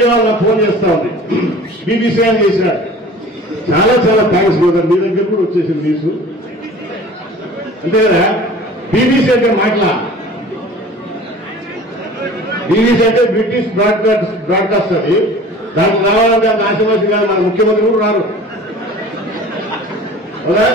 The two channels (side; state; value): both; normal; correlation 0.44